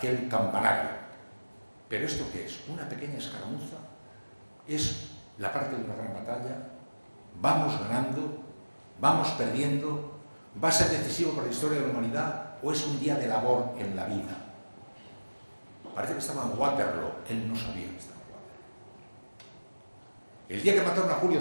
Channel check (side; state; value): both; inverted; correlation -1.00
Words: campanario. ¿Pero esto qué es? ¿Una pequeña escaramuza? ¿Es la parte de una gran batalla? ¿Vamos ganando? ¿Vamos perdiendo? ¿Va a ser decisivo para la historia de la humanidad? ¿O es un día de labor en la vida? Parece que estaba en Waterloo. Él no sabía que estaba en Waterloo. El día que mataron a Julio